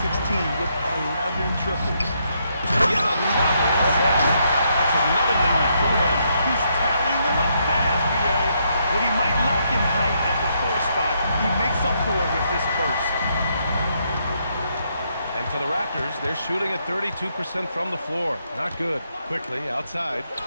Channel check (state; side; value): inverted; both; correlation -0.76